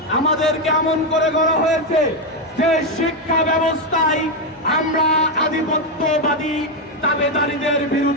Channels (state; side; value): normal; both; correlation 0.05